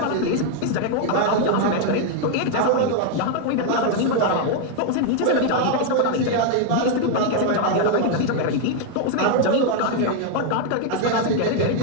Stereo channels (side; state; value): both; different; correlation 0.00